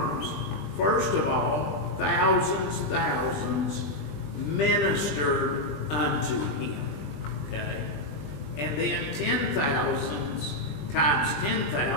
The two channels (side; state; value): right; late; 20 ms